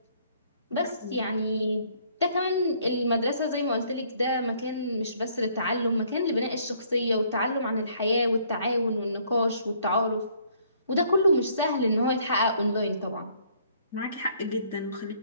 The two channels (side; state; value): both; inverted; correlation -0.63